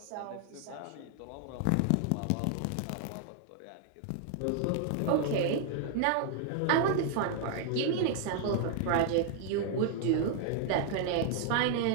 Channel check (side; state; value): both; different; correlation 0.00